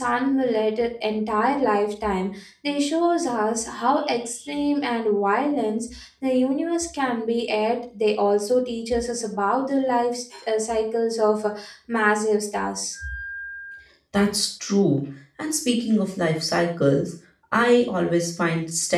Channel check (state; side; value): identical; both; correlation 1.00